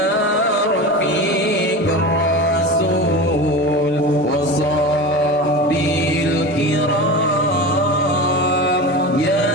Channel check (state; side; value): normal; both; correlation 0.28